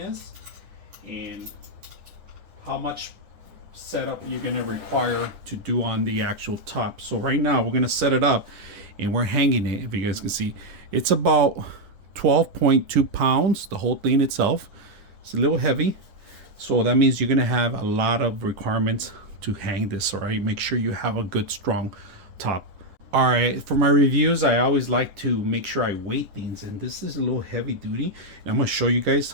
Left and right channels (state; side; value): late; left; 10 ms